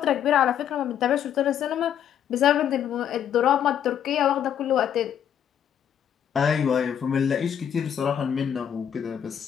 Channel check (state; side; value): quieter; right; 9.2 dB